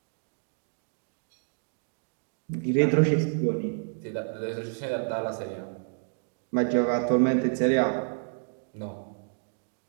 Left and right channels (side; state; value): left; silent; digital silence